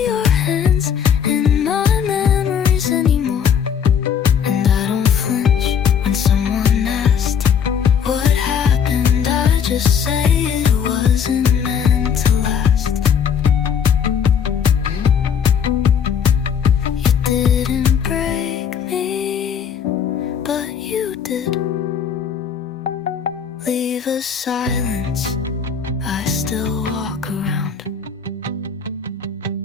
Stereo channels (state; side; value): quieter; right; 7.4 dB